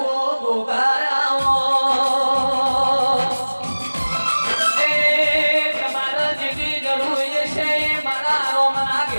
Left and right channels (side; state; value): both; inverted; correlation -1.00